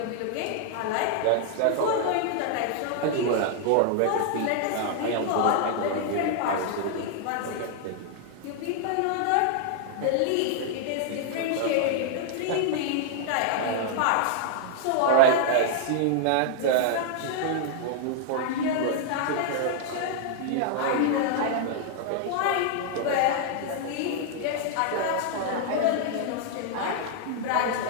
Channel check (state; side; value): different; both; correlation -0.01